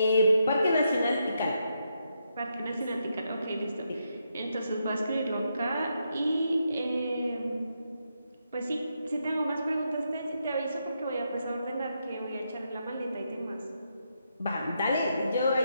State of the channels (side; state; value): both; inverted; correlation -0.81